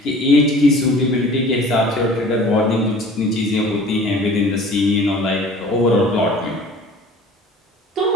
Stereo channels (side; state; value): both; normal; correlation 0.46